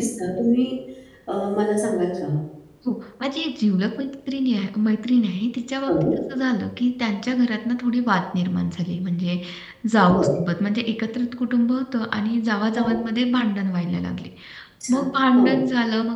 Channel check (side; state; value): both; identical; correlation 1.00